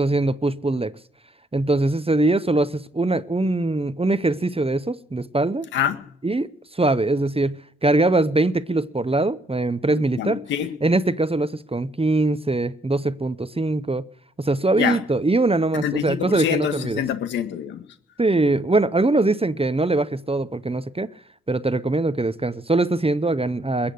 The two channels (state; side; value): normal; both; correlation 0.69